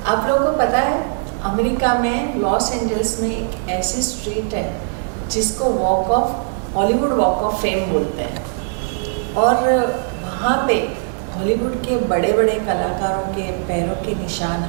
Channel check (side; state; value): left; silent; digital silence